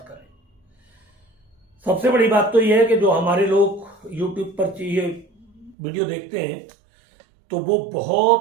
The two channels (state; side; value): drops out; left; at 5.8 s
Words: सबसे बड़ी बात तो यह है कि जो हमारे लोग YouTube पर ये वीडियो देखते हैं तो वो